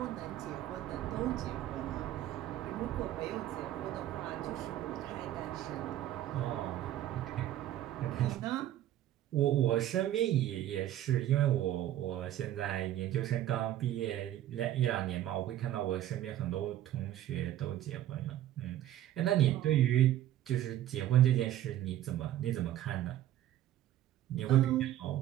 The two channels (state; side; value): quieter; left; 12.7 dB